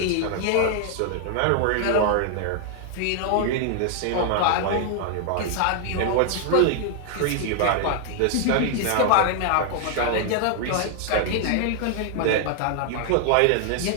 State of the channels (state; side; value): different; both; correlation 0.00